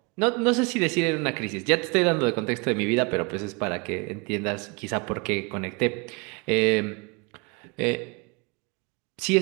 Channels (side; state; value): left; quieter; 29.3 dB